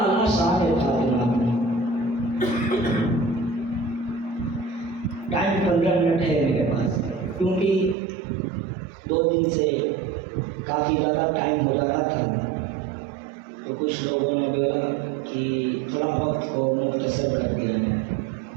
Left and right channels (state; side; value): drops out; left; at 8.0 s